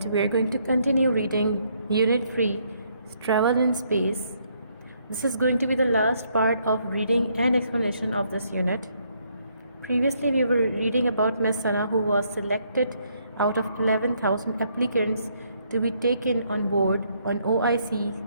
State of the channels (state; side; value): inverted; both; correlation -0.71